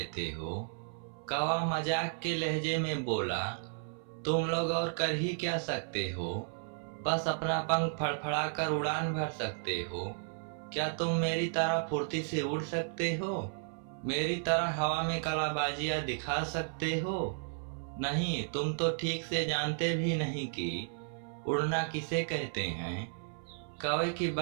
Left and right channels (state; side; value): silent; left; 55 dB below the other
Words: हो, कौवा मजाक के लहजे में बोला। तुम लोग और कर ही क्या सकते हो, बस अपना पंख फड़फड़ा कर उड़ान भर सकते हो। क्या तुम मेरी तरह फुर्ती से उड़ सकते हो? मेरी तरह हवा में कलाबाजियां दिखा सकते हो? नहीं, तुम तो ठीक से जानते भी नहीं कि उड़ना किसे कहते हैं। कौवे की